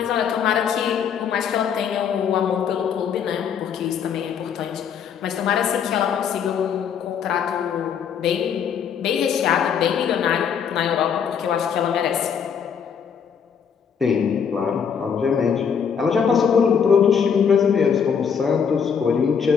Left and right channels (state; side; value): quieter; right; 7.2 dB